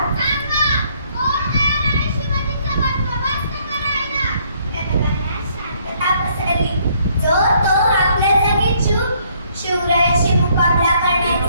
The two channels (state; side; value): inverted; both; correlation -0.66